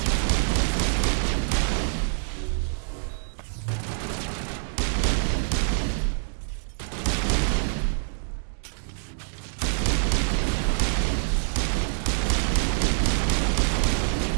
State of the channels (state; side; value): silent; left; digital silence